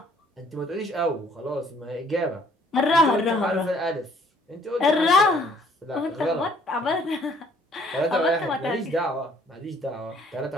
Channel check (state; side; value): normal; both; correlation 0.60